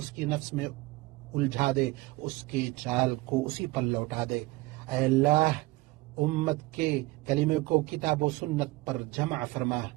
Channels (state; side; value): quieter; left; 21.2 dB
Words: کی نفس میں الجھا دے، اس کے چال کو اسی پر لوٹا دے۔ اے اللہ امت کے کلمے کو کتاب و سنت پر جمع فرما۔